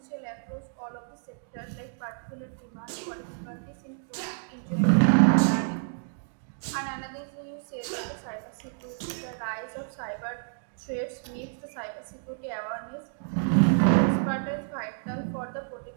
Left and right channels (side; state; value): left; silent; digital silence